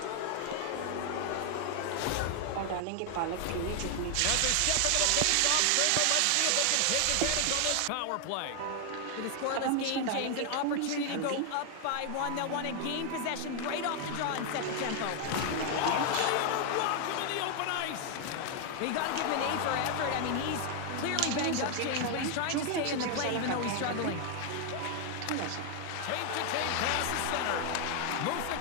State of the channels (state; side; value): different; both; correlation 0.00